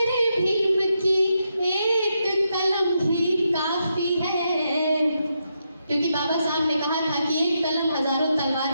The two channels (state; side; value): inverted; both; correlation -0.82